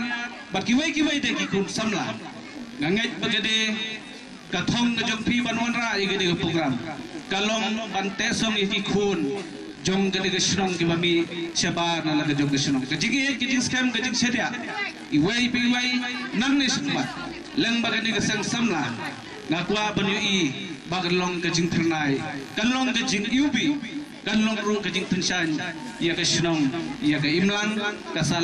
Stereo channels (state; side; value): identical; both; correlation 1.00